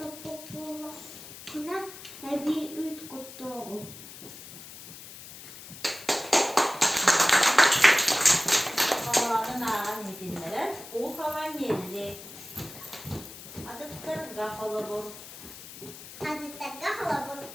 bulduğuna, bir üç kutlu. havan geldi. Adıttır kafalı bu. Hazırda halabur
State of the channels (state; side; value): noise; left; hiss, 14 dB below the sound